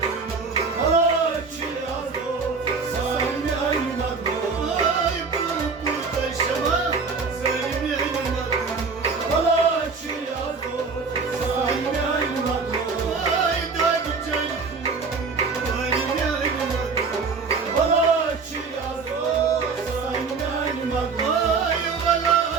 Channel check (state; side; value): quieter; left; 4.8 dB